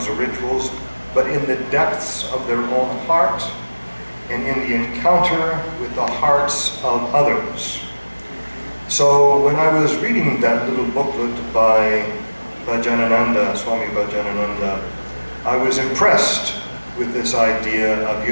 or rituals, but in the depths of their own heart and in the encounter with the hearts of others. So when I was reading that little booklet by Bhajanananda, Swami Bhajanananda, I was impressed with this idea of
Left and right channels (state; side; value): inverted; both; correlation -1.00